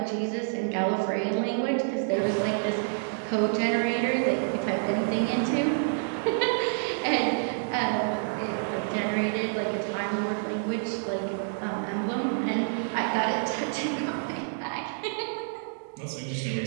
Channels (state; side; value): silent; left; digital silence